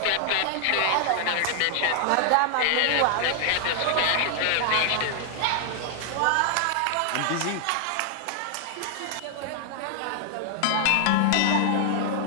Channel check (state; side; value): different; both; correlation 0.00